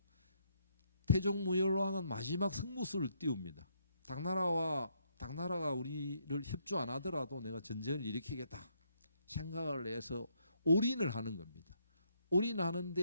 태종 무열왕은 마지막 승부수를 띄웁니다. 당나라가 우리를 협조 안 하더라도 내가 전쟁을 일으키겠다 생각을 해서 올인을 하는 겁니다.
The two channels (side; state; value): both; inverted; correlation -0.73